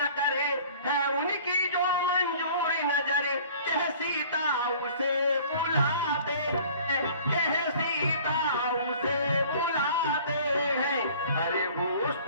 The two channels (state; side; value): inverted; both; correlation -0.49